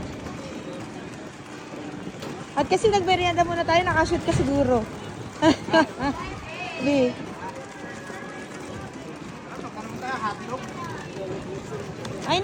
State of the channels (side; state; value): both; identical; correlation 1.00